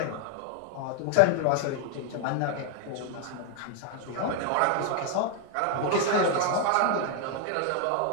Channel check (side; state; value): both; different; correlation 0.00